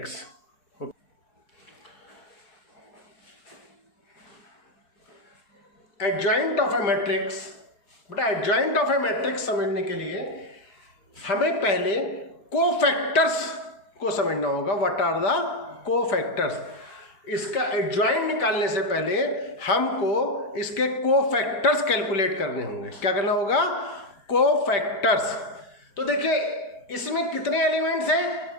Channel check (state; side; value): late; right; 5.1 ms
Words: Adjoint of a matrix, बेटा एडजॉइंट ऑफ अ मैट्रिक्स समझने के लिए हमें पहले कोफैक्टर्स को समझना होगा। What are the cofactors? इसका एडजॉइंट निकालने से पहले हमको इसके कोफैक्टर्स कैलकुलेट करने होंगे। क्या करना होगा? कोफैक्टर्स। तो देखिए इसमें कितने एलिमेंट्स हैं?